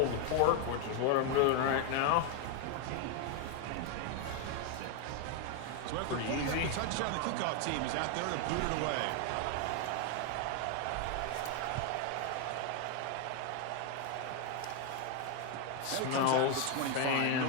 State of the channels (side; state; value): both; different; correlation 0.01